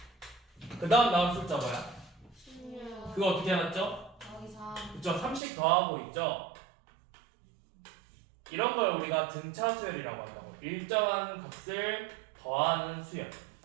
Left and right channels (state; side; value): drops out; left; at 5.4 s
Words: 그 다음 나온 숫자 뭐야? 16. 그거 어떻게 해놨죠? 더하기 3. 그쵸. 30 더하고 있죠. 이런 걸 우리가 등차 수열이라고 한다고. 일정한 값을 더하는 수열.